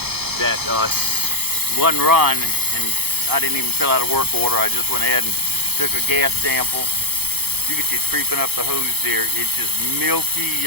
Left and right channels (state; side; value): late; left; 0.97 ms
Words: that one run, and I didn't even fill out a work order. I just went ahead and took a gas sample. You can see it's creeping up the hose there. It's just milky,